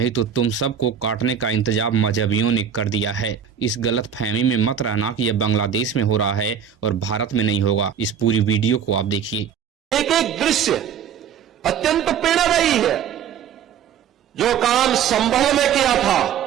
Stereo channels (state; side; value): quieter; left; 8.2 dB